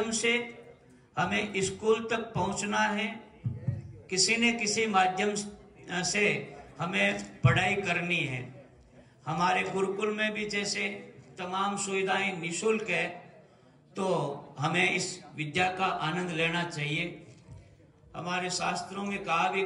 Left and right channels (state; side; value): identical; both; correlation 1.00